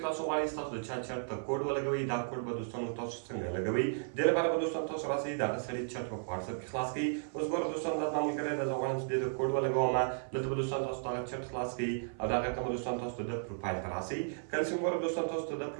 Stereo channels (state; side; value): silent; left; 55 dB below the other